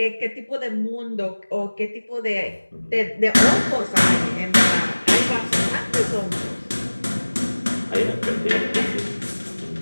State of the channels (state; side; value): inverted; both; correlation -1.00